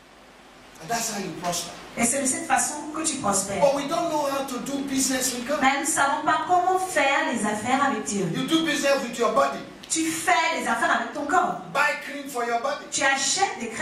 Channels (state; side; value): identical; both; correlation 1.00